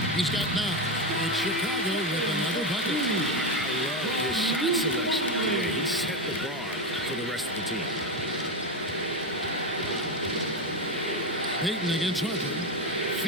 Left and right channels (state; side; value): normal; both; correlation 0.13